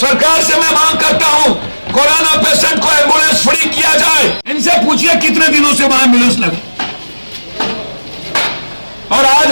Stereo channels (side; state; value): both; inverted; correlation -1.00